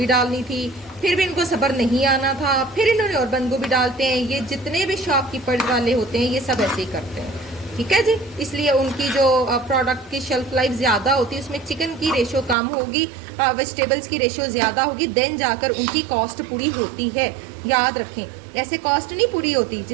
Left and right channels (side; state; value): left; drops out; at 12.6 s